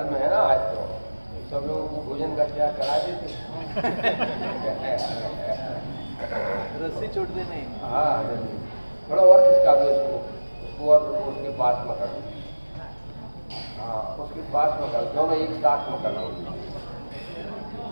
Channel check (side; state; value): both; inverted; correlation -1.00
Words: है ना। आज तो सब लोगों को भोजन का त्याग करा देते। रस्सी छोड़ दे नहीं। हाँ, थोड़ा और खिसका दो उसको और उसके पास में कर दो। हाँ, उसके पास में कर दो, दोनों एक साथ में कर दो।